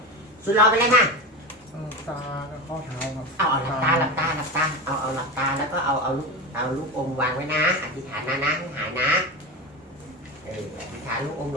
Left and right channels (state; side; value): normal; both; correlation 0.22